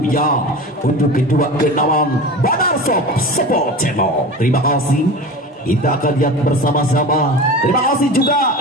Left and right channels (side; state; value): both; normal; correlation 0.32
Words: untuk kedua kenaman Badar Shop Support Channel. Terima kasih. Kita akan lihat bersama-sama. Terima kasih juga